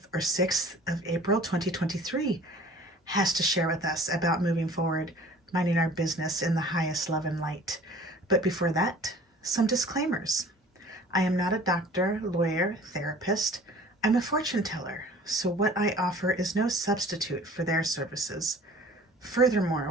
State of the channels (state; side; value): normal; both; correlation 0.48